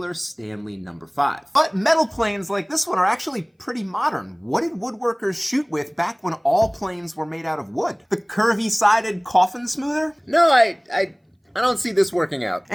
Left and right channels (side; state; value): both; identical; correlation 1.00